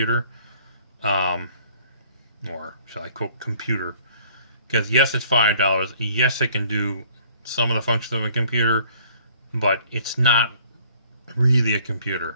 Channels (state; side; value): inverted; both; correlation -0.57